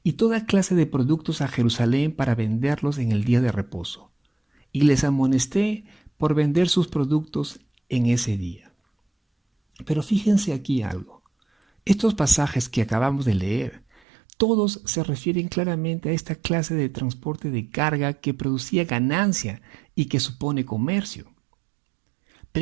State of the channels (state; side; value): drops out; left; at 14.0 s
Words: y toda clase de productos a Jerusalén para venderlos en el día de reposo. Y les amonesté por vender sus productos en ese día. Pero fíjense aquí algo. Estos pasajes que acabamos de leer, todos se refieren claramente a esta clase de transporte de carga que producía ganancia y que supone comercio.